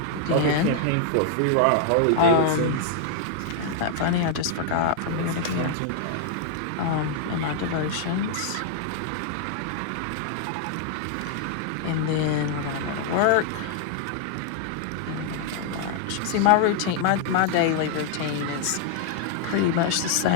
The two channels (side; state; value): both; different; correlation 0.00